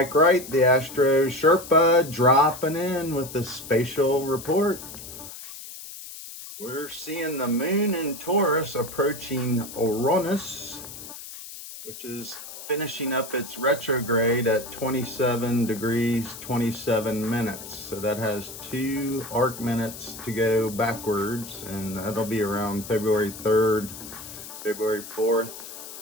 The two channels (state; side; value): noise; left; hiss, 13 dB below the sound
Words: Wright, the Astro Sherpa, dropping in with the spatial report. We're seeing the moon in Taurus approaching Uranus, which is finishing up its retrograde at 27 degrees 27 minutes. So that has 2 arc minutes to go backwards, and that'll be around February 3rd, February 4th,